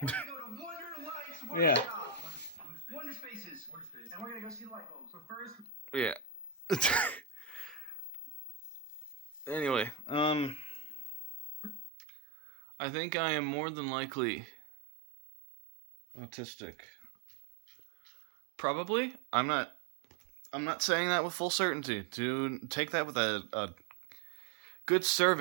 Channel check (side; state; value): left; drops out; at 11.9 s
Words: we're gonna go to Wonder Lights Workshop. Wonder Spaces. Wonder Space. And we're gonna go see the light bulbs. But first, Yeah. Anyway, I think I am more than likely autistic. Probably. I'm not saying that with full certainty. To take that with a good